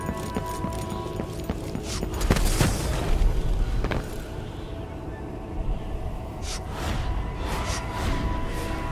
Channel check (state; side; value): identical; both; correlation 1.00